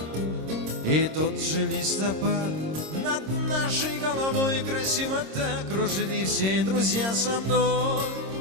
И тот же листопад над нашей головой красиво так кружит, и все друзья со мной.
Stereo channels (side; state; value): left; late; 26 ms